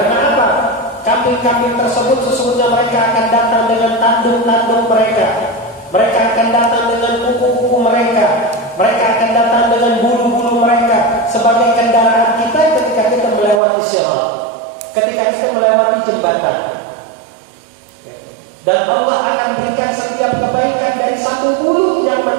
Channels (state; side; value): drops out; left; at 13.6 s